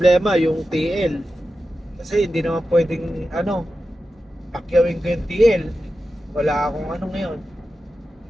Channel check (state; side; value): normal; both; correlation 0.92